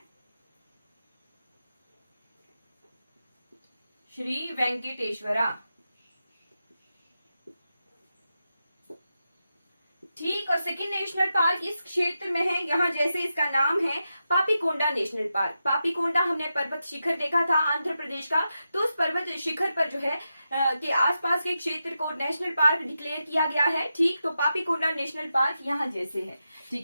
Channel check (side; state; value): both; inverted; correlation -0.89